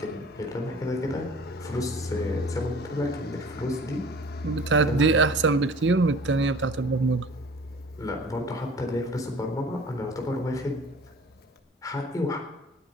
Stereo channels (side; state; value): both; normal; correlation 0.45